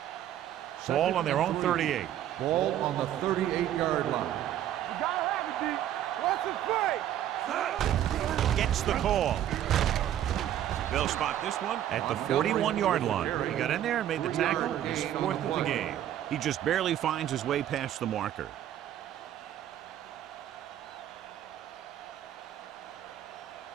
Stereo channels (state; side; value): quieter; left; 11.5 dB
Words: Ball on their own 38. Ball on the 38-yard line. You gotta have it, D. What's the play? Gets the call. They'll spot this one at the 41-yard line. He got in there and made the tackle. His 4th of the game. He just barely finds his way past the marker.